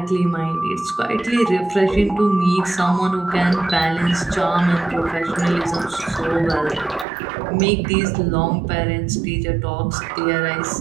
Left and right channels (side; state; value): left; drops out; at 7.1 s